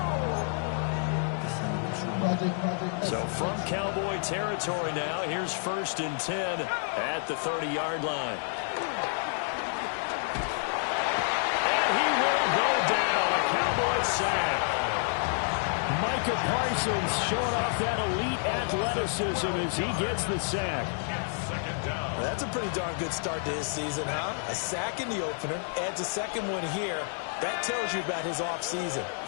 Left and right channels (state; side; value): silent; right; 57 dB below the other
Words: So from Cowboy territory now, here's 1st and 10 at the 30-yard line. And he will go down, a Cowboy sack. Micah Parsons showing off that elite athleticism as he gets the sack. That's a pretty darn good start to his season, huh? A sack in the opener, adds a second one here. That tells you about his offseason.